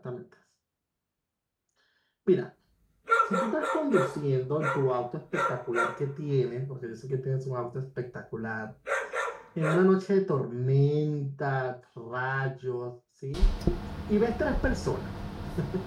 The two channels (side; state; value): both; identical; correlation 1.00